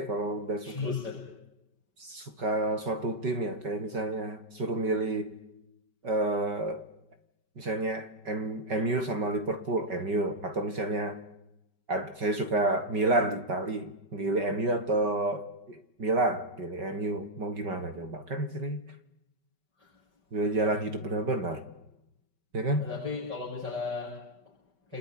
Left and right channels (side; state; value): left; late; 5.2 ms